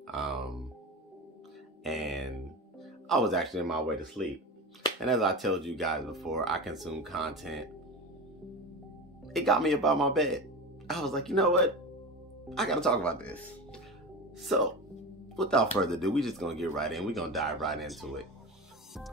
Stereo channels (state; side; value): normal; both; correlation 0.25